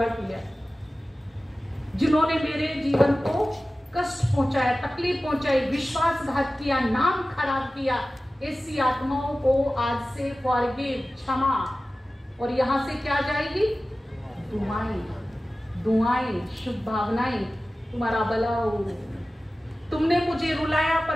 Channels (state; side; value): normal; both; correlation 0.96